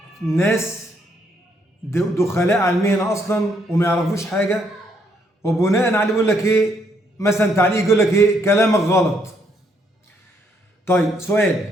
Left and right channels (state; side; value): normal; both; correlation 0.72